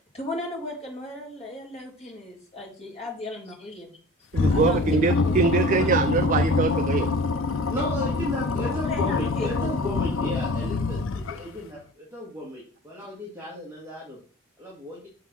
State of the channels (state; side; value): normal; both; correlation 0.41